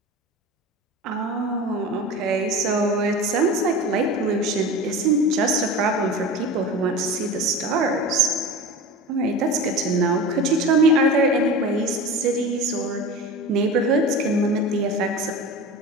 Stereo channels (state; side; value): normal; both; correlation 0.32